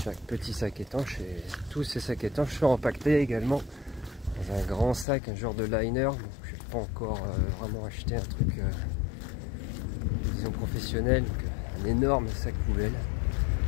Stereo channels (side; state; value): right; drops out; at 5.1 s